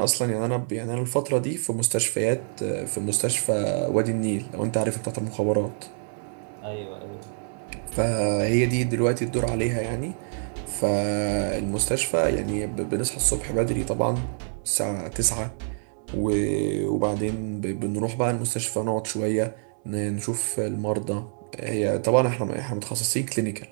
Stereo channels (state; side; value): silent; left; 61 dB below the other